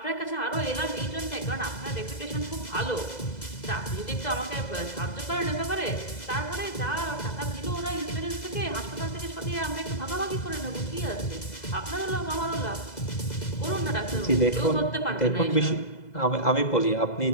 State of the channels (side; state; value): right; late; 2.0 ms